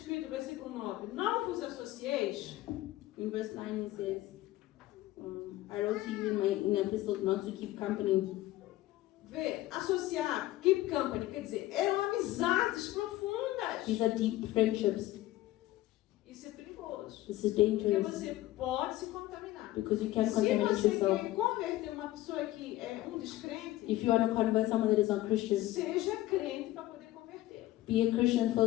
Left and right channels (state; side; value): quieter; right; 16.1 dB